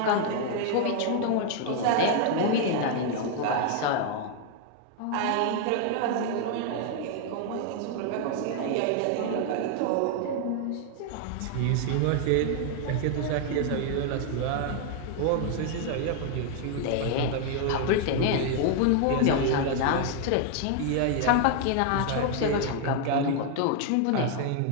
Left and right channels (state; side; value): different; both; correlation 0.00